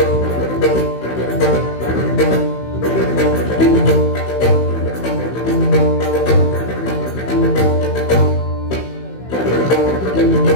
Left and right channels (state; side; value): late; right; 16 ms